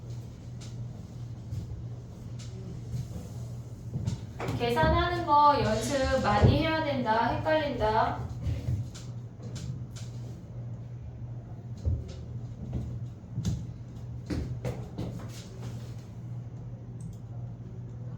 계산하는 거 연습 많이 해야 된다. 헷갈린다.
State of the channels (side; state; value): both; identical; correlation 1.00